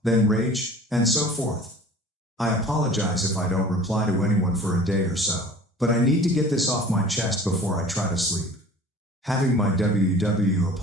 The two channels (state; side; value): normal; both; correlation 0.45